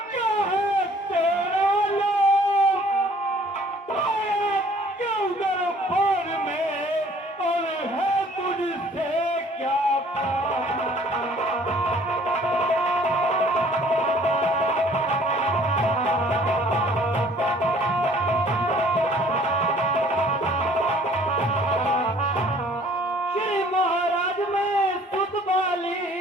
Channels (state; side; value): normal; both; correlation 0.55